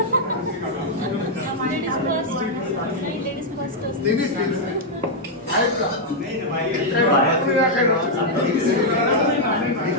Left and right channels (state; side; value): normal; both; correlation -0.03